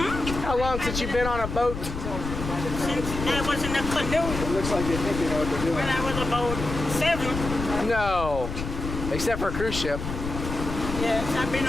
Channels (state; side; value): noise; left; rumble, 6 dB below the sound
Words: How long since you've been on a boat? Since I was in a canoe. It looks like you think you know what they're doing. When I was about 7. No, except for a cruise ship. Yes, I've been